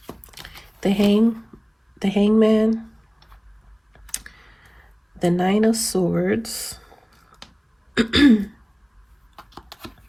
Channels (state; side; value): identical; both; correlation 1.00